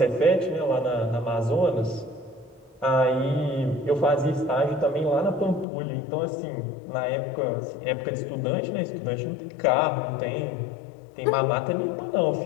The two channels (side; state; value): right; drops out; at 5.7 s